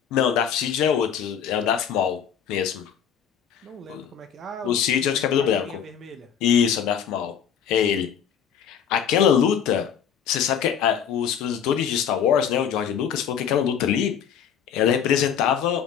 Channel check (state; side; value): quieter; right; 8.3 dB